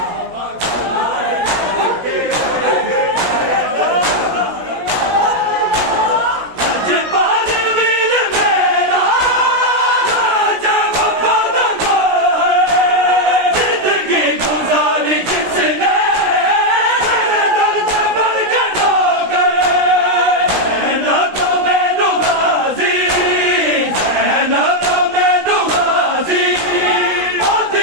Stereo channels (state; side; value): late; left; 17 ms